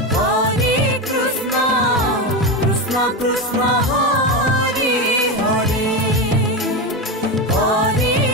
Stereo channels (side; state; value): both; normal; correlation 0.16